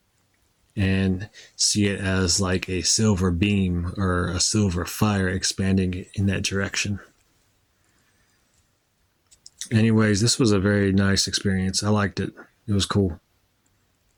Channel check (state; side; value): identical; both; correlation 1.00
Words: And see it as like a silver beam or a silver fire expanding in that direction. Anyways, this was a very nice experience. I liked it. It was cool.